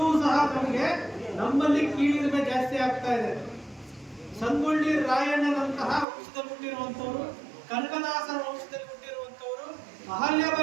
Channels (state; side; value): drops out; left; at 6.1 s